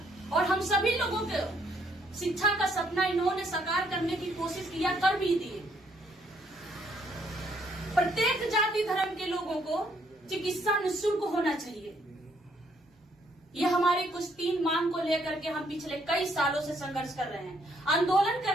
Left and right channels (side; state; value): both; normal; correlation 0.69